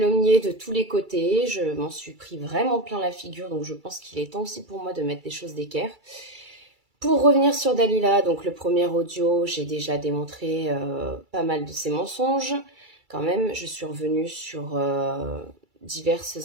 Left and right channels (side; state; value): left; late; 2.3 ms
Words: de tous les côtés, je m'en suis pris vraiment plein la figure, donc je pense qu'il est temps aussi pour moi de mettre des choses d'équerre. Pour revenir sur Dalila, donc le premier audio, j'ai déjà démontré pas mal de ses mensonges. Quand même, je suis revenue sur